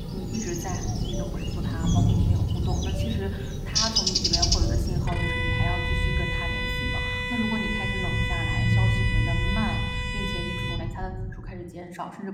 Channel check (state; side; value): identical; both; correlation 1.00